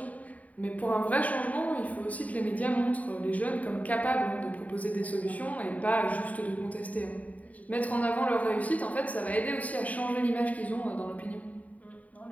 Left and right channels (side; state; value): right; late; 0.071 ms